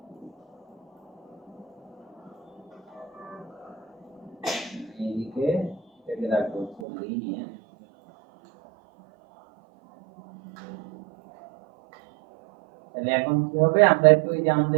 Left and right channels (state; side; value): drops out; left; at 6.9 s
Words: এদিকে এটাকে রাখবো লিনিয়ার। তাহলে এখন কি হবে, আমরা একটু এই যে